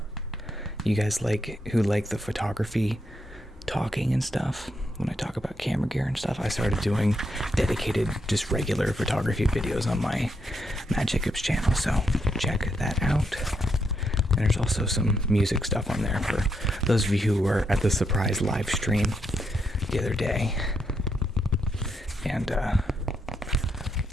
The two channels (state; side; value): normal; both; correlation 0.79